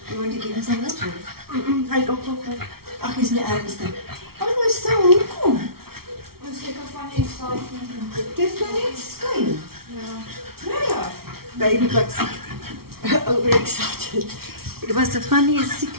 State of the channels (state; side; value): late; left; 0.94 ms